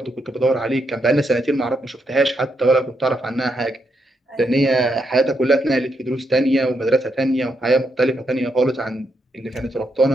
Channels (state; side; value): normal; both; correlation 0.80